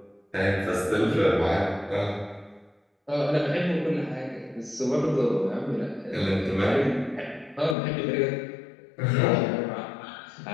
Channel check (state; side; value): drops out; right; at 7.8 s